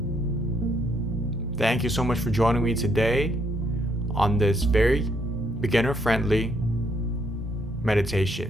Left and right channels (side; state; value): both; normal; correlation 0.72